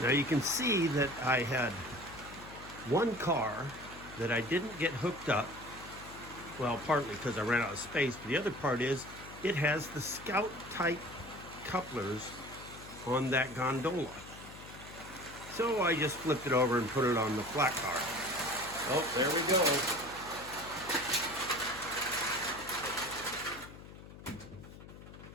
you can see that I had one car that I didn't get hooked up. Well, partly because I ran out of space, but the other part is it has the Scout type couplers on that gondola. So I just flipped it over and put it on the flat car. Oh, there we go.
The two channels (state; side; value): noise; left; hum, 16 dB below the sound